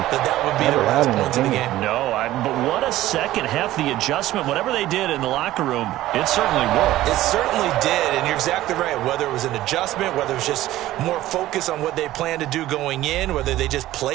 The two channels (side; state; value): left; quieter; 15.1 dB